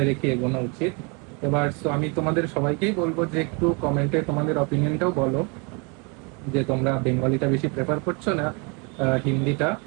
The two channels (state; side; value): quieter; left; 32.3 dB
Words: রেখে এগোনো উচিত। এবার আমি তোমাদের সবাইকেই বলবো যে একটু কমেন্টে তোমাদের অপিনিয়নটাও বলো, যে তোমরা বেঙ্গলিটা বেশি প্রেফার করছো না হিন্দিটা।